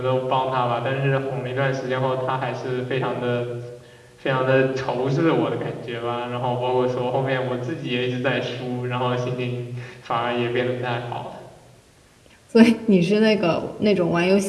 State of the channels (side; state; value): both; identical; correlation 1.00